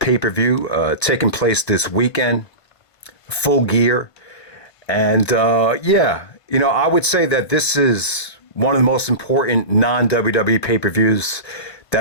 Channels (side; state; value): right; late; 1.5 ms